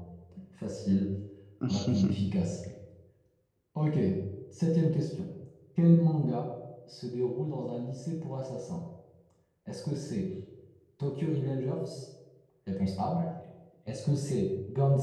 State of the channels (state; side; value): identical; both; correlation 1.00